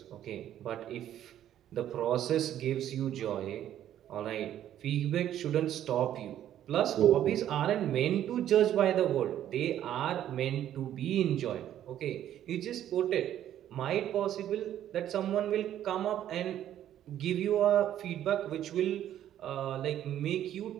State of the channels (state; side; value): quieter; left; 11.4 dB